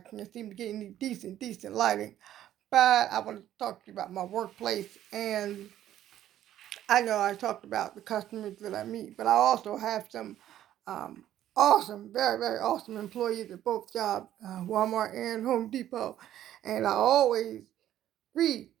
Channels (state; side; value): quieter; left; 12.1 dB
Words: can't seem to get any decent lighting. But I want to talk to you about my workplace. And I know I talked about the customers that I meet, but I also have some um, awesome, very, very awesome employees at both jobs, Walmart and Home Depot. And I always greet